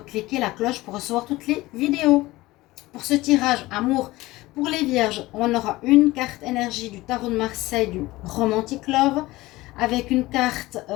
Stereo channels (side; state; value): right; quieter; 19.0 dB